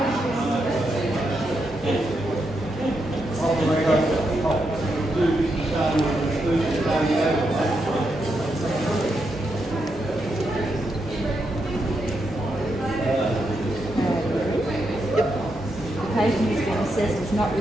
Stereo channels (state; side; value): normal; both; correlation 0.83